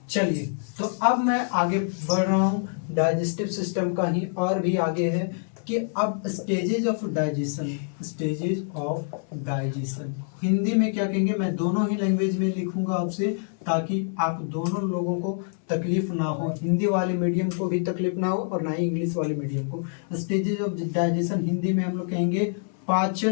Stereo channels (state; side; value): silent; right; 60 dB below the other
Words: चलिए तो अब मैं आगे बढ़ रहा हूँ डाइजेस्टिव सिस्टम का ही, और भी आगे है कि अब stages of digestion, stages of digestion Hindi में क्या कहेंगे, मैं दोनों ही लैंग्वेज में लिखूंगा आपसे, ताकि आप दोनों लोगों को तकलीफ ना हो, हिंदी वाले मीडियम को भी तकलीफ ना हो और ना ही इंग्लिश वाले मीडियम को। स्टेजेज ऑफ डाइजेशन हिंदी में हम लोग कहेंगे